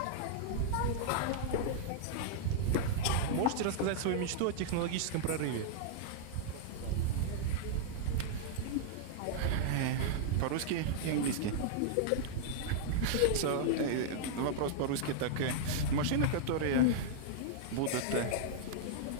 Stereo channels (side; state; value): both; different; correlation -0.01